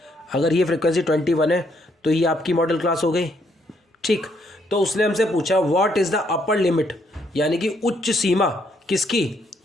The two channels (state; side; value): normal; both; correlation 0.72